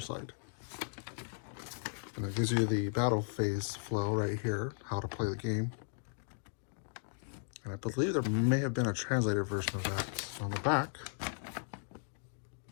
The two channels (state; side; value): silent; right; digital silence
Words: And it gives you the battle phase flow right here, how to play the game. And I believe there may have been a translated version of that on the back.